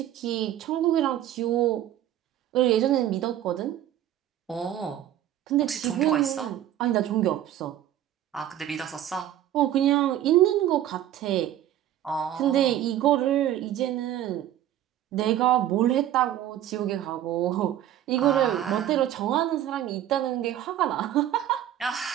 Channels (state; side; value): quieter; left; 11.9 dB